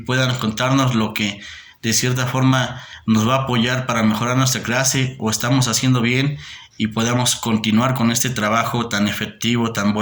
contarnos lo que de cierta forma nos va a apoyar para mejorar nuestra clase o estamos haciendo bien y podamos continuar con este trabajo tan efectivo, tan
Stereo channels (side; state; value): both; identical; correlation 1.00